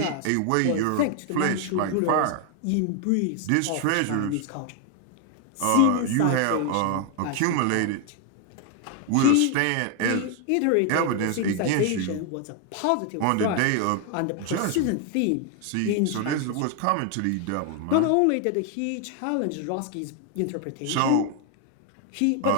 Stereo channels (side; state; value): both; different; correlation 0.00